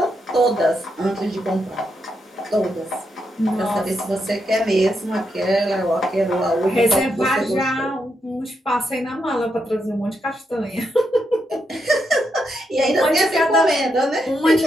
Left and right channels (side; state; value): both; normal; correlation 0.82